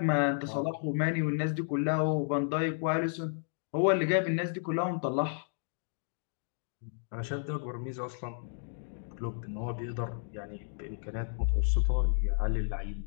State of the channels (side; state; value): right; silent; digital silence